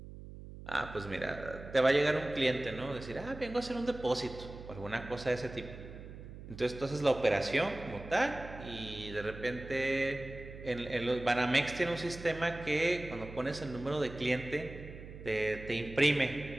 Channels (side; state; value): right; noise; hum, 13 dB below the sound